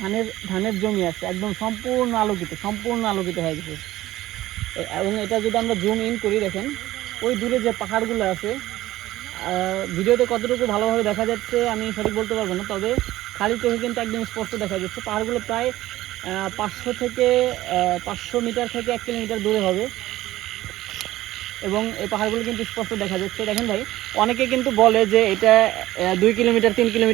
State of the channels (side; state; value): left; quieter; 15.9 dB